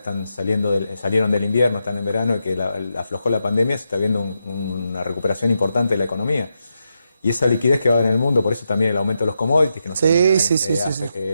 salieron del invierno, están en verano y que aflojó la pandemia, se está viendo una recuperación importante de la economía. Y esa liquidez que va en el mundo, por eso también el aumento de los commodities, que nos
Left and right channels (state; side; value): inverted; both; correlation -0.85